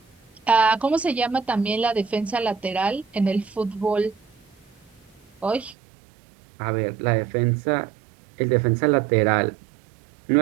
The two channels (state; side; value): drops out; left; at 5.8 s